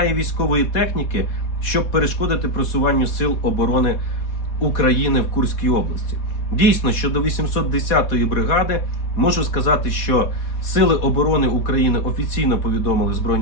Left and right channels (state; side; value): late; right; 4.1 ms